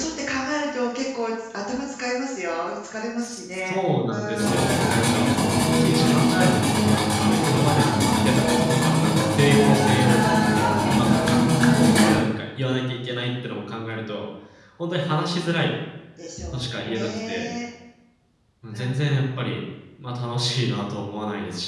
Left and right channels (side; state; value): both; identical; correlation 1.00